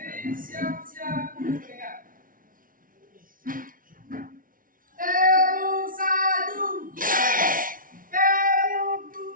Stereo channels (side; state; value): left; late; 0.40 ms